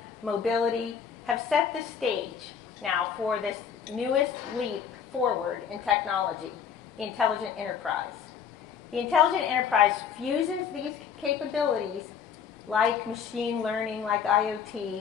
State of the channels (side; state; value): right; quieter; 7.4 dB